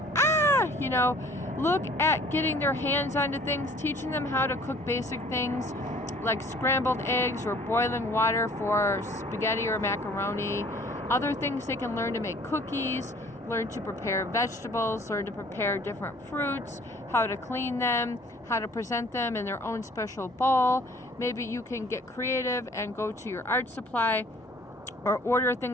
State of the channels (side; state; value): both; normal; correlation 0.53